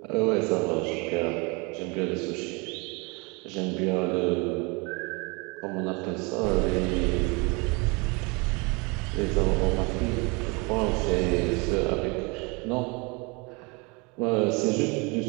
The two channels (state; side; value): quieter; left; 28.8 dB